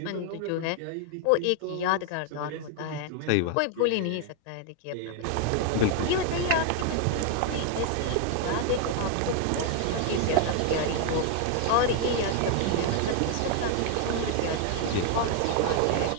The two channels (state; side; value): different; both; correlation 0.00